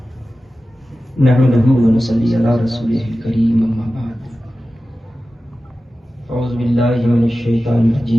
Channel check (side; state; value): both; normal; correlation 0.94